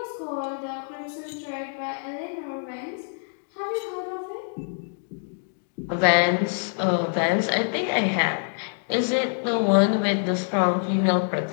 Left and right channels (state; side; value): silent; right; digital silence